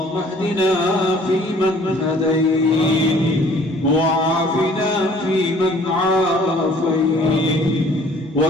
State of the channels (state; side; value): normal; both; correlation 0.55